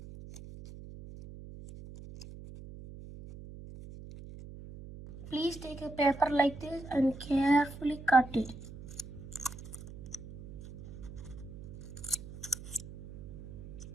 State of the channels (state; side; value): noise; right; hum, 13 dB below the sound